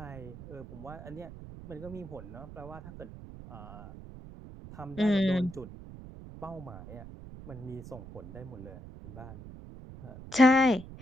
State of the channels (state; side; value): noise; right; rumble, 14 dB below the sound